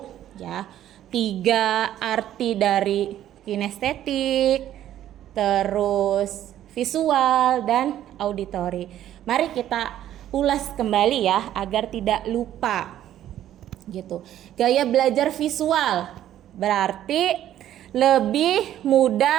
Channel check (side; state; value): left; quieter; 11.9 dB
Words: ya 3 arti dari kinestetik, terus visual dan auditori. Mari kita ulas kembali ya agar tidak lupa gitu. Gaya belajar visual berarti lebih